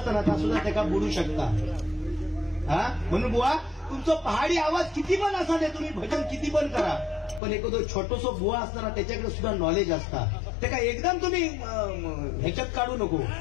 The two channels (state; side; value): drops out; right; at 7.4 s